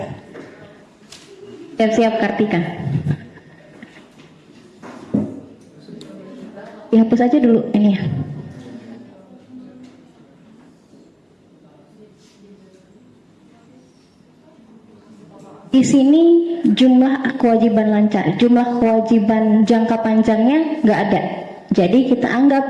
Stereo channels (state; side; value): identical; both; correlation 1.00